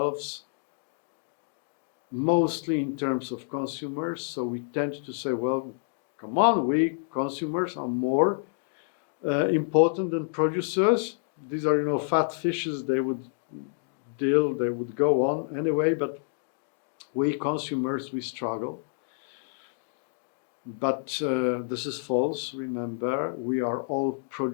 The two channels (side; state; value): right; silent; digital silence